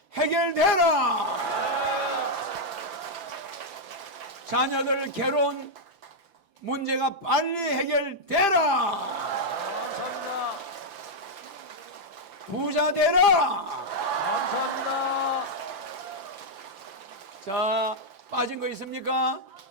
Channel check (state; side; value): late; left; 5.9 ms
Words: 해결되라. 자녀들 결혼 문제가 빨리 해결되라. 감사합니다. 부자 되라. 감사합니다. 자, 빠진 거 있습니까?